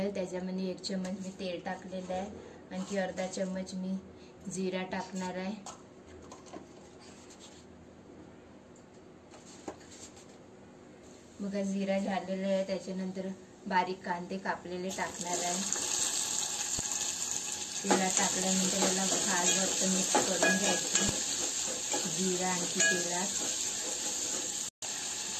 त्याच्यामध्ये 1 चम्मच मी तेल टाकलेलं आहे, आणखी अर्धा चम्मच मी जिरा टाकणार आहे। बघा जिरा झालेला आहे, त्याच्यानंतर बारीक कांदे कापलेले टाकणार आहे। तेलात टाकल्यानंतर याला खालवर मिक्स करून घ्यायचं, जिरा आणखी तेलात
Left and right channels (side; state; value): both; identical; correlation 1.00